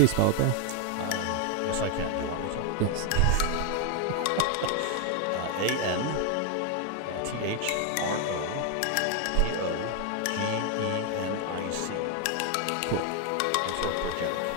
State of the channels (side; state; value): both; different; correlation 0.01